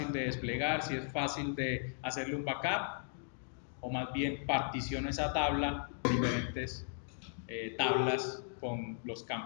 de desplegar, si es fácil de hacerle un backup, o más bien particiono esa tabla en diferentes tablas con los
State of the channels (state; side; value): silent; right; digital silence